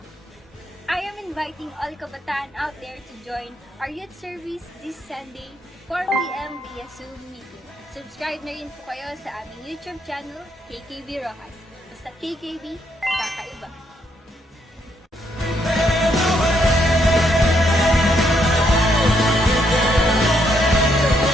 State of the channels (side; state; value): both; normal; correlation 0.75